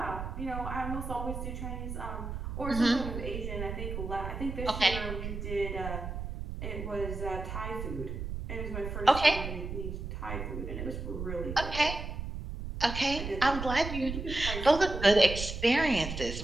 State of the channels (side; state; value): right; noise; rumble, 6 dB below the sound